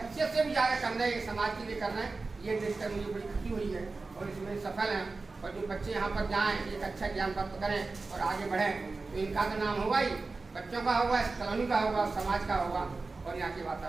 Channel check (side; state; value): left; quieter; 3.8 dB